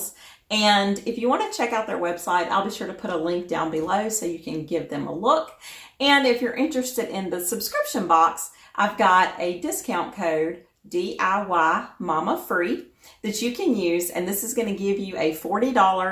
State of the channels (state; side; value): identical; both; correlation 1.00